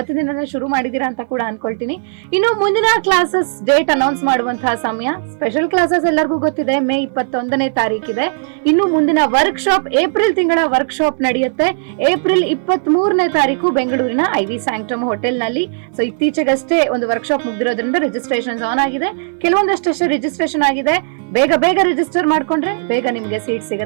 ದಿನ ಶುರು ಮಾಡಿದೀರಾ ಅಂತ ಕೂಡ ಅನ್ಕೊಳ್ತೀನಿ. ಇನ್ನು ಮುಂದಿನ ಕ್ಲಾಸಸ್ ಡೇಟ್ ಅನೌನ್ಸ್ ಮಾಡುವಂತಹ ಸಮಯ. ಸ್ಪೆಷಲ್ ಕ್ಲಾಸಸ್ ಎಲ್ಲರಿಗೂ ಗೊತ್ತಿದೆ, ಮೇ 21ನೇ ತಾರೀಕಿದೆ. ಇನ್ನು ಮುಂದಿನ ವರ್ಕ್ ಶಾಪ್ ಏಪ್ರಿಲ್ ತಿಂಗಳ ವರ್ಕ್ ಶಾಪ್ ನಡೆಯುತ್ತೆ. ಏಪ್ರಿಲ್ 23ನೇ ತಾರೀಕು ಬೆಂಗಳೂರಿನ ಐವಿ ಸ್ಯಾಂಕ್ಟಮ್ ಹೋಟೆಲ್ ನಲ್ಲಿ. ಸೊ ಇತ್ತೀಚೆಗಷ್ಟೇ ಒಂದು ವರ್ಕ್ ಶಾಪ್ ಮುಗ್ದಿರೋದ್ರಿಂದ ರಿಜಿಸ್ಟ್ರೇಷನ್ ಆನ್ ಆಗಿದೆ. ಕೆಲವೊಂದಷ್ಟೇ ರಿಜಿಸ್ಟ್ರೇಷನ್ ಆಗಿದೆ. ಬೇಗ ರಿಜಿಸ್ಟರ್ ಮಾಡ್ಕೊಂಡ್ರೆ ಬೇಗ ನಿಮ್ಗೆ ಸೀಟ್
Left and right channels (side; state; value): left; silent; digital silence